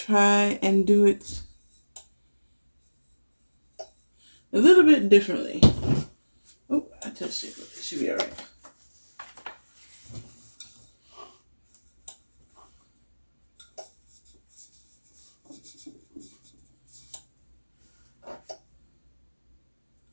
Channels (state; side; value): inverted; both; correlation -1.00